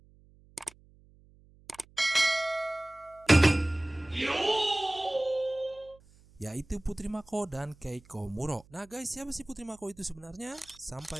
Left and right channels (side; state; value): right; noise; hum, 27 dB below the sound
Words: Yaitu Putri Mako dan Keiko Muro. Nah guys, siapa sih Putri Mako itu sebenarnya?